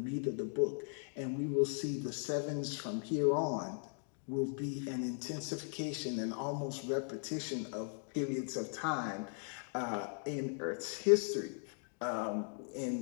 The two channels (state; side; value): silent; right; 52 dB below the other